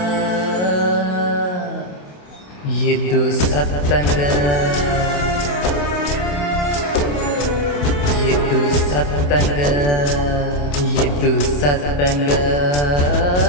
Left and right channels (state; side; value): late; right; 28 ms